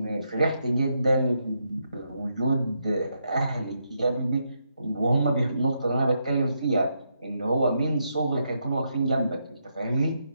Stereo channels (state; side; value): inverted; both; correlation -0.80